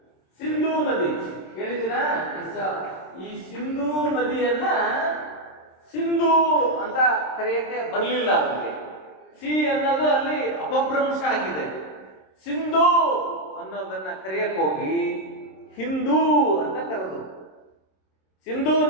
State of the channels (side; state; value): right; late; 26 ms